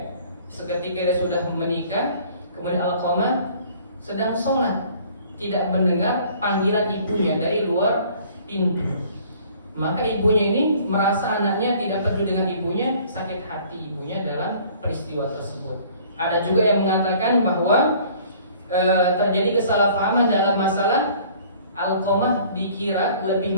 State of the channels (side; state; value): both; inverted; correlation -0.54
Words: seketika dia sudah menikah, kemudian Alqamah sedang sholat, tidak mendengar panggilan ibunya dari luar pintu. Maka ibunya ini merasa anaknya tidak peduli dengan ibunya, sakit hati ibunya dalam peristiwa tersebut. Ada juga yang mengatakan bahwa terjadi kesalahpahaman dalam masalah Alqamah dikira lebih